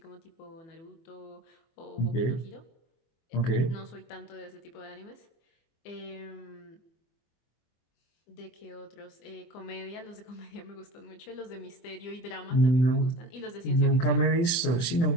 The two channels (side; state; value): right; late; 24 ms